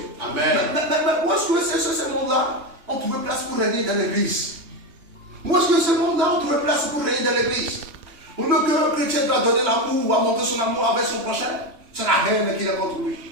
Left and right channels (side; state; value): left; late; 3.2 ms